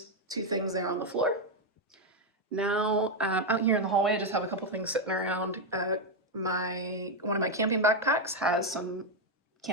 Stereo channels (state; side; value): normal; both; correlation 0.04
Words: 2 things there on the floor. Now, out here in the hallway, I just have a couple things sitting around. One of my camping backpacks has some